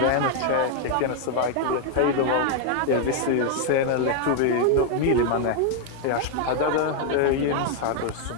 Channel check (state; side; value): different; both; correlation 0.00